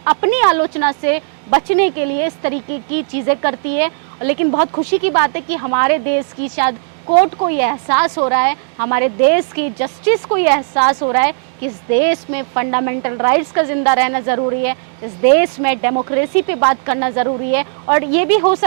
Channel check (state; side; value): silent; left; digital silence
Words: अपनी आलोचना से बचने के लिए इस तरीके की चीज़ें करती है। लेकिन बहुत खुशी की बात है कि हमारे देश की शायद कोर्ट को ये एहसास हो रहा है, हमारे देश की जस्टिस को ये एहसास हो रहा है कि इस देश में फंडामेंटल राइट्स का जिंदा रहना ज़रूरी है, इस देश में डेमोक्रेसी पे बात करना ज़रूरी है। और ये भी हो